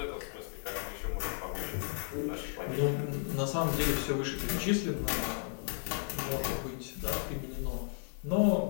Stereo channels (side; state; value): right; silent; 55 dB below the other